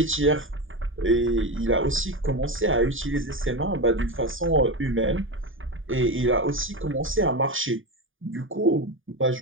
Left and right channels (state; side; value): late; left; 0.58 ms